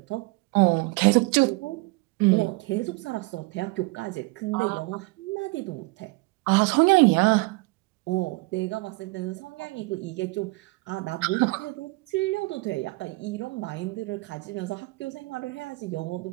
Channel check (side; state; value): left; quieter; 25.0 dB